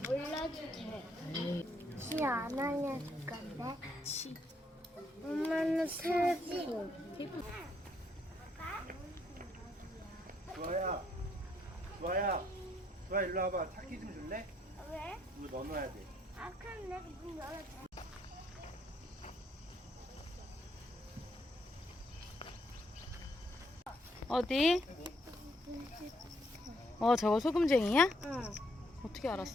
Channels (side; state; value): both; normal; correlation 0.72